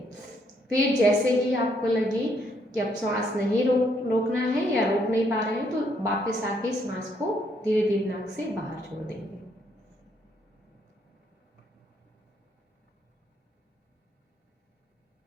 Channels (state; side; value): normal; both; correlation 0.72